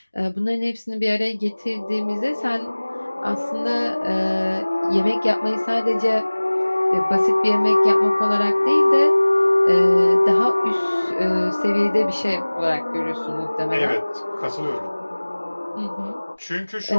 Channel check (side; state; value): both; inverted; correlation -1.00